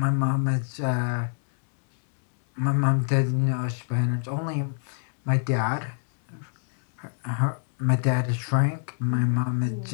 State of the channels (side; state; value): right; silent; digital silence